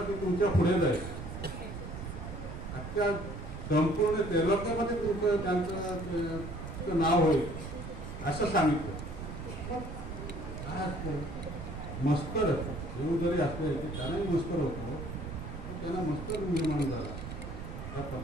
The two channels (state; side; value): noise; right; rumble, 9 dB below the sound